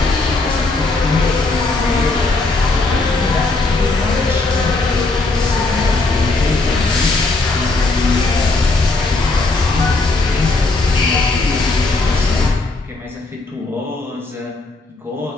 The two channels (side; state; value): right; quieter; 3.3 dB